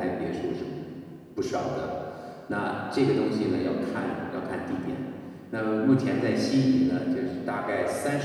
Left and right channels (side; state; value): both; identical; correlation 1.00